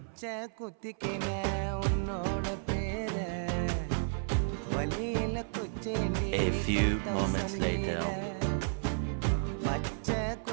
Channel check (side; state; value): left; silent; 56 dB below the other